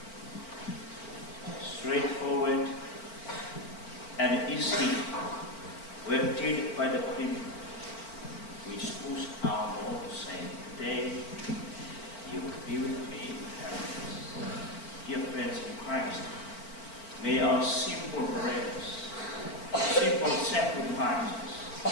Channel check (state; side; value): late; right; 4.4 ms